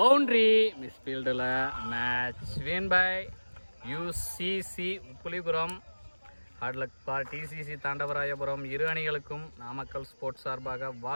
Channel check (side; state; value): both; inverted; correlation -1.00